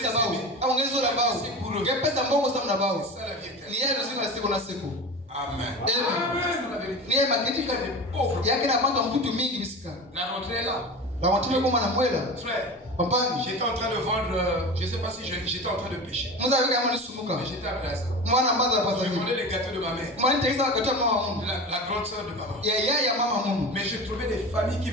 pour eux. C'est ça la vie éternelle. Amen. La rentrée est là. Frère, j'étais en train de vendre, je ne sais pas si j'étais en train de pécher. Mais j'étais à Plaza. Je vendais les gâteaux de ma mère. La grande soeur de maman. Mais je trouvais des familles qui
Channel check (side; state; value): both; normal; correlation 0.31